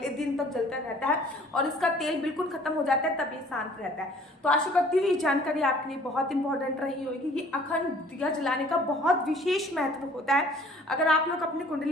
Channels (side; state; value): both; normal; correlation 0.54